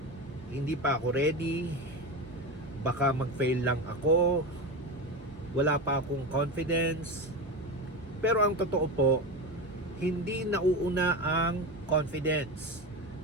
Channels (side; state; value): both; normal; correlation 0.21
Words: hindi pa ako ready, baka mag-fail lang ako, wala pa akong confidence. Pero ang totoo po, hindi nauuna ang confidence.